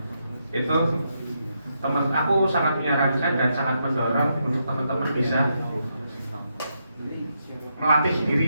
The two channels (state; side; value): inverted; both; correlation -0.81